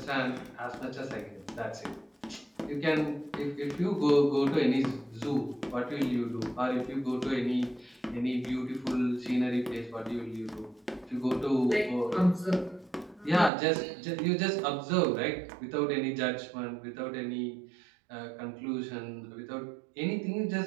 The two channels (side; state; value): left; drops out; at 13.5 s